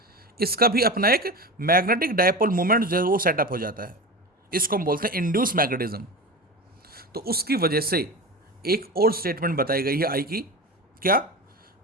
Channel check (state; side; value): normal; both; correlation 0.27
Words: इसका भी अपना एक मैग्नेटिक डायपोल मोमेंट जो है वो सेटअप हो जाता है, इसको हम बोलते हैं इंड्यूस मैग्नेटिज्म। तो उसकी वजह से एक और स्टेटमेंट बताई गई है आई की, क्या,